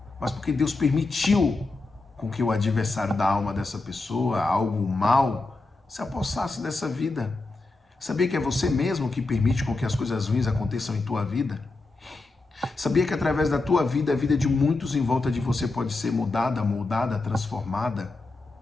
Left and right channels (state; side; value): quieter; right; 3.4 dB